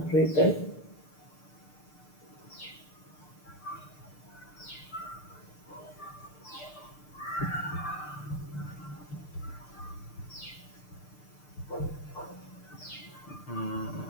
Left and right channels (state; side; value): late; right; 6.7 ms